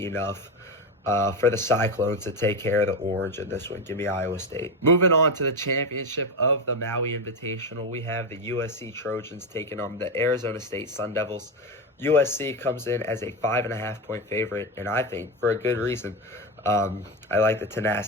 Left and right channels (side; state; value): both; normal; correlation 0.14